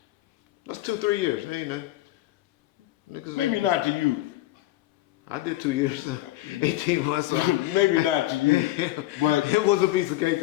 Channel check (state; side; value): quieter; right; 16.3 dB